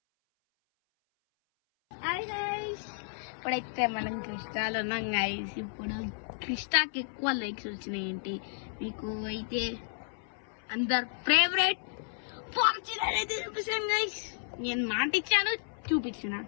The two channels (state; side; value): silent; right; 56 dB below the other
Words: హాయ్ గైస్, ఇప్పుడైతే మనం క్రిస్టాలో ఉన్నాం గైస్. ఇప్పుడు క్రిస్టాకి ఎక్కువ లైక్స్ వచ్చినాయి. ఏంటి మీకు అయితే అందరు ఫేవరెట్ ఫార్చునర్ అయితే చూపిస్తాను గైస్. నేను మాట ఇచ్చాను,